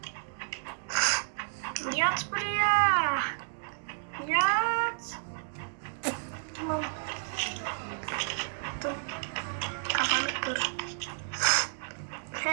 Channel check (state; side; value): silent; left; digital silence